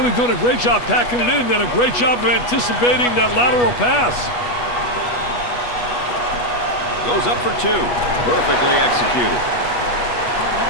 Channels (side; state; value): right; late; 8.3 ms